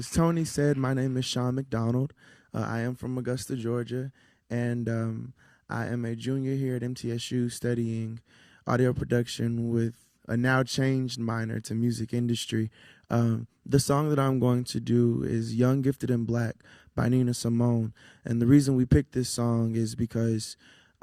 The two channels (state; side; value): identical; both; correlation 1.00